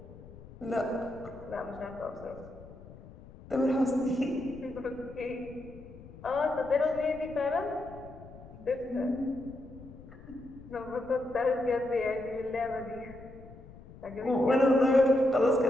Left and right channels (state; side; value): noise; left; rumble, 18 dB below the sound